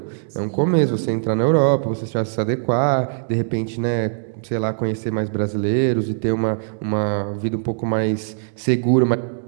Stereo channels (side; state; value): left; silent; digital silence